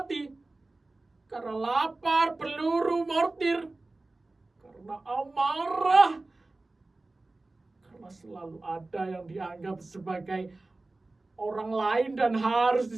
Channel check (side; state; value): left; quieter; 3.1 dB